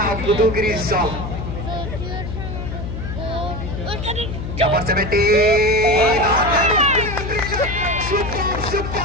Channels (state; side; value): noise; left; hum, 6 dB below the sound